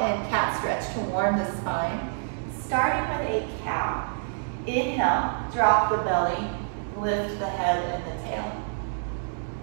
and cat stretch to warm the spine. Starting with a cow. Inhale, drop the belly, lift the head and the tail.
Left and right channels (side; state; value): left; silent; digital silence